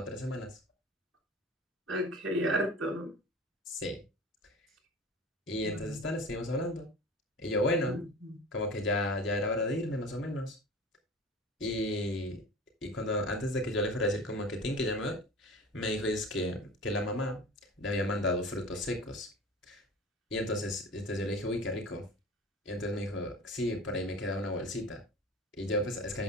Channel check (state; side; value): normal; both; correlation 0.37